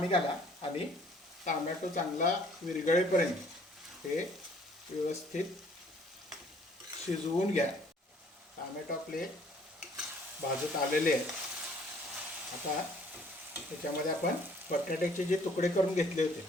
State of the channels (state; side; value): normal; both; correlation 0.59